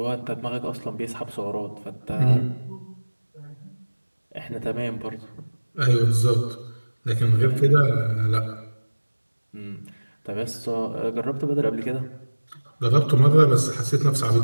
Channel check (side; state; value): both; inverted; correlation -1.00